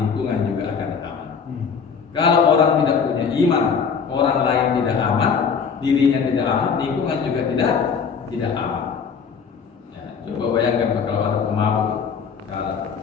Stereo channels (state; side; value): quieter; right; 6.3 dB